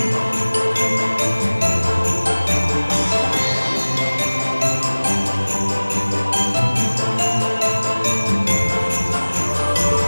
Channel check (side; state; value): both; inverted; correlation -1.00